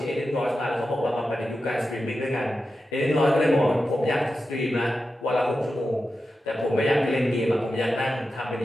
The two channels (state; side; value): normal; both; correlation 0.91